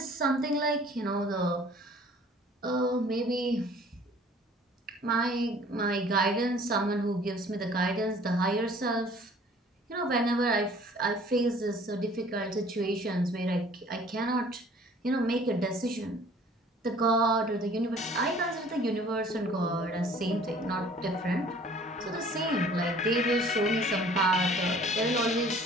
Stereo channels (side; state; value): both; normal; correlation 0.52